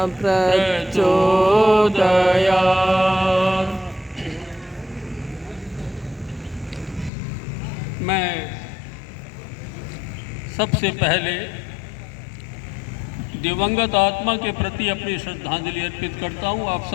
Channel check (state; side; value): drops out; right; at 7.1 s